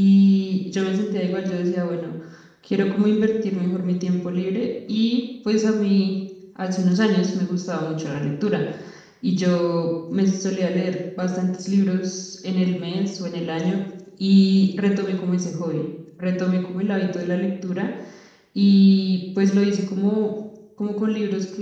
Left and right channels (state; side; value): identical; both; correlation 1.00